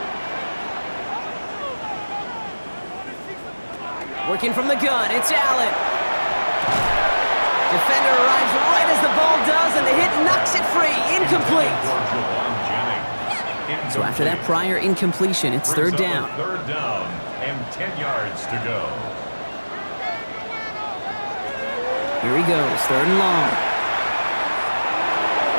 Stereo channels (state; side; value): inverted; both; correlation -1.00